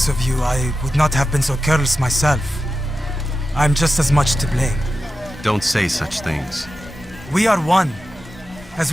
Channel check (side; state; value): both; normal; correlation 0.92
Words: of you, I would not have been so careless myself. I'm just as much to blame. Don't say such things. We are one. As